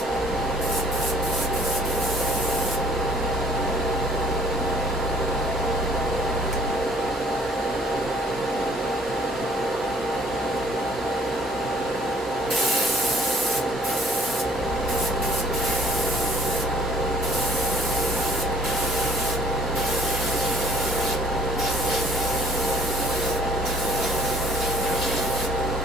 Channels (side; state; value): both; normal; correlation 0.57